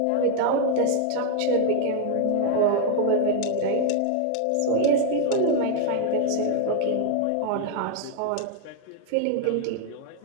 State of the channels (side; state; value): both; different; correlation 0.00